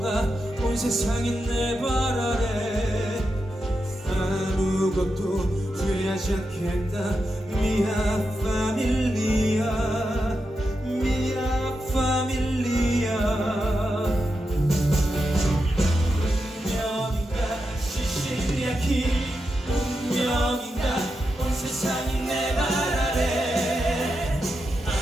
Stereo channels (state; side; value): normal; both; correlation 0.87